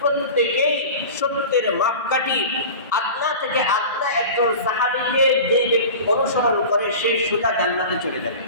প্রত্যেকেই সত্যের মাপকাঠি। আদনা থেকে আদনা একজন সাহাবীকে যে ব্যক্তি অনুসরণ করে সে সোজা জান্নাতে চলে যাবে।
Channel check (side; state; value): both; inverted; correlation -0.35